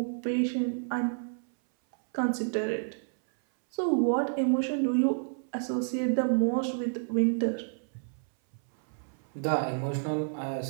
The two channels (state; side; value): silent; left; 58 dB below the other